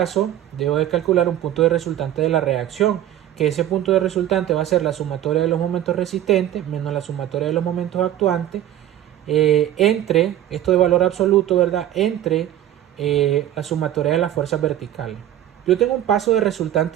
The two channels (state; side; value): quieter; left; 12.0 dB